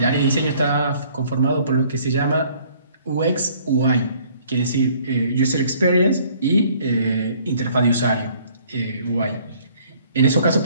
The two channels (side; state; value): both; inverted; correlation -0.59